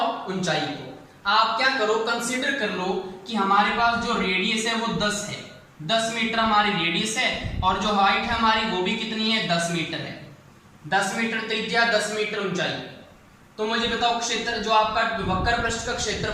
ऊंचाई को। आप क्या करो कंसीडर कर लो कि हमारे पास जो रेडियस है वो 10 है, 10 मीटर हमारी रेडियस है और जो हाइट है हमारी वो भी कितनी है 10 मीटर है, 10 मीटर त्रिज्या 10 मीटर ऊंचाई। तो मुझे बताओ क्षेत्र जो आपका वक्र पृष्ठ का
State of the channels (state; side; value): identical; both; correlation 1.00